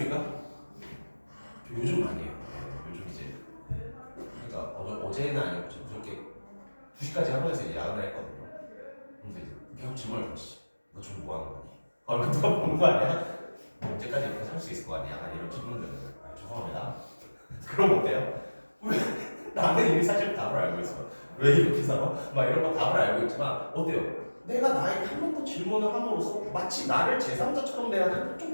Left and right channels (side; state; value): both; inverted; correlation -1.00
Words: 요즘 많이 해요. 요즘 이제 그러니까 어제는 아니고 저렇게 2시까지 학원에서 야근을 했거든요. 근데 계속 질문을 던지지. 너 지금 뭐 하는 거니? 얼마 동안 본 거 아니야? 언제까지 이렇게 살 수 있을 거 아니야? 이런 질문들은 죄송합니다. 그럼 어때요? 왜? 나는 이미 사실 답을 알고 있어. 왜 이렇게 살아? 막 이런 거 답을 알고 있지만 어때요? 내가 나에게 한 번 더 질문을 함으로써 마치 나를 제3자처럼 대하는 좀